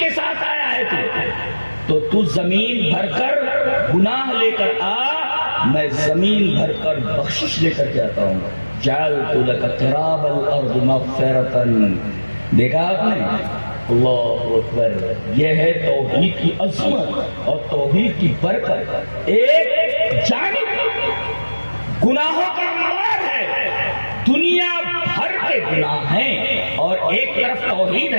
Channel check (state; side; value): inverted; both; correlation -1.00